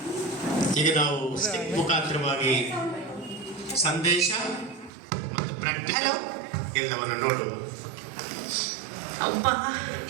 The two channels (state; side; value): drops out; left; at 4.9 s